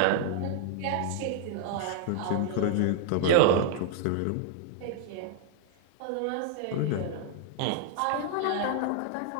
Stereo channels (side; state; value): both; different; correlation 0.00